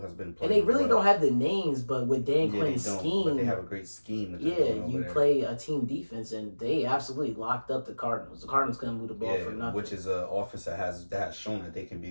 has been and playing they really well. don't have the names, but with Dan Yeah, Quinn's they don't, scheme, but they have a great scheme. That they're yeah, doing over you there. play a team defense, and they absolutely locked up the Cardinals. The Cardinals couldn't move the ball for nothing. which is an offense that has shown that they can be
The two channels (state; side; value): inverted; both; correlation -1.00